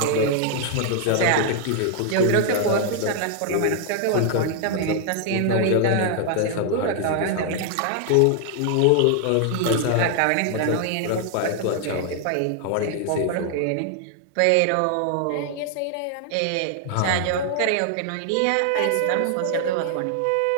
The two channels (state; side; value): different; both; correlation 0.00